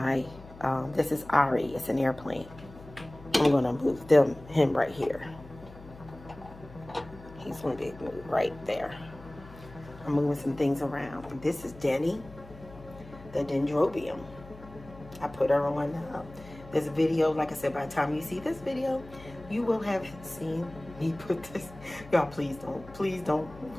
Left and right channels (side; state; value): left; noise; hum, 18 dB below the sound